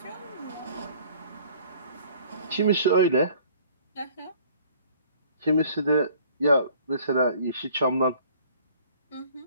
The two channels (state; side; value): inverted; both; correlation -0.54